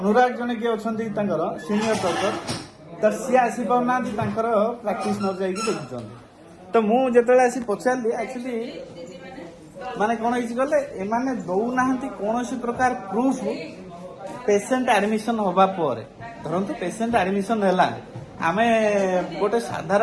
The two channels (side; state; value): both; identical; correlation 1.00